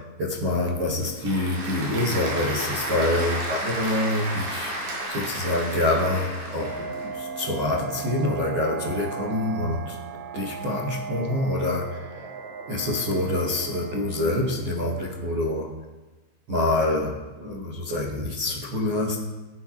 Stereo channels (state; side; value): late; left; 14 ms